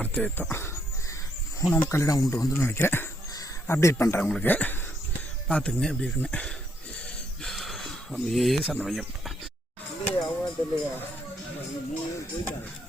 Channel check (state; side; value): normal; both; correlation 0.73